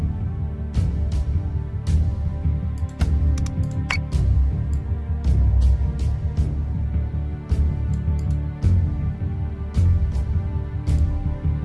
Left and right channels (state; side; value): identical; both; correlation 1.00